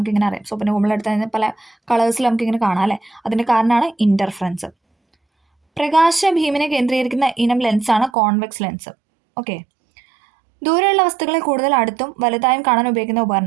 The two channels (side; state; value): left; drops out; at 8.1 s